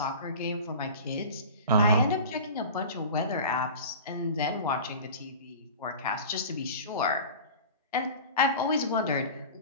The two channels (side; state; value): both; inverted; correlation -0.37